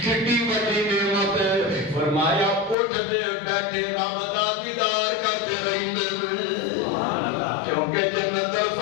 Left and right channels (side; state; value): right; drops out; at 2.8 s